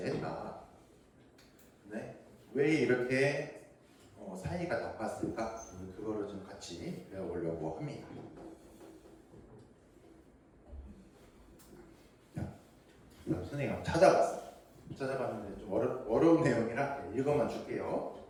네, 왜 이렇게 사이가 나빴을까? 그거를 좀 같이 배워보려고 합니다. 자, 선생님이 한번 찾아봤는데 좀 어려운 내용이라 읽어만 줄게요.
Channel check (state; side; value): identical; both; correlation 1.00